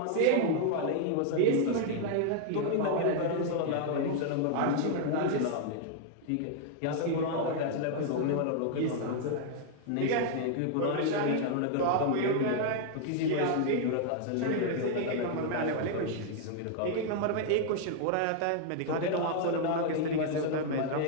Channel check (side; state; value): both; different; correlation 0.00